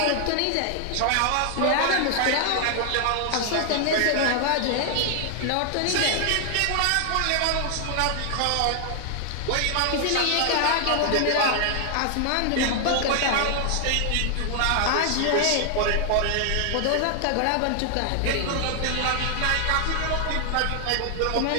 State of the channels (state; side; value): different; both; correlation 0.00